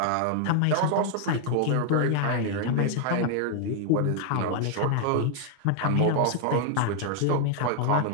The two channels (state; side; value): different; both; correlation 0.00